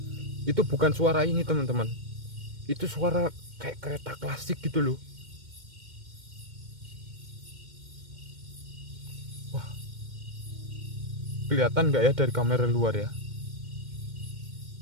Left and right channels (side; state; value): left; late; 2.1 ms